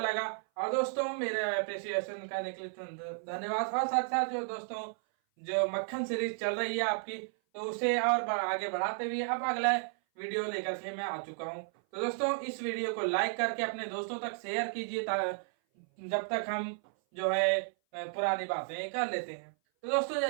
और दोस्तों, मेरे अप्रिसिएशन करने के लिए धन्यवाद। और साथ साथ जो दोस्तों जो मक्खन सीरीज चल रही है आपकी, तो उसे और आगे बढ़ाते हुए अब अगला वीडियो लेकर के मैं आ चुका हूं। तो दोस्तों, इस वीडियो को लाइक करके अपने दोस्तों तक शेयर कीजिए जब तक हम जो है पुरानी बातें कर लेते हैं। तो दोस्तों,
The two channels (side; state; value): left; silent; 56 dB below the other